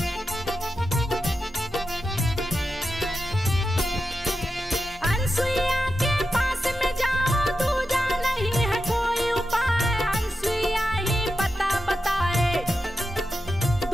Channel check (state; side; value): normal; both; correlation 0.90